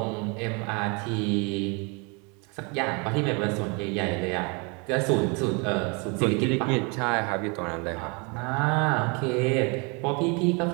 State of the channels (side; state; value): left; quieter; 31.9 dB